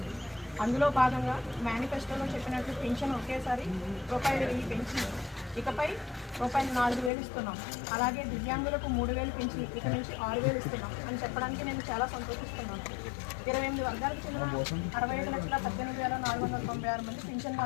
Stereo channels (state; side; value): drops out; right; at 7.1 s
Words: అందులో భాగంగా మేనిఫెస్టోలో చెప్పినట్లు పెన్షన్ ఒకేసారి ₹1,000 పెంచి ఇకపై ₹4,000 ఇస్తున్నాం. అలాగే దివ్యాంగులకు 3,000 పెంచి ఇక నుంచి 6,000 ఇస్తున్నాం అని చెప్పడానికి నేను చాలా సంతోషిస్తున్నాను. 28 వర్గాలకు చెందిన 65,18,496 మంది పెన్షన్